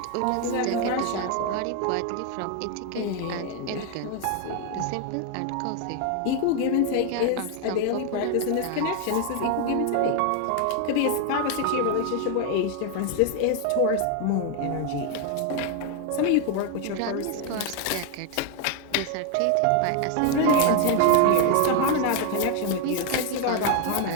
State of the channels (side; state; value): both; different; correlation 0.01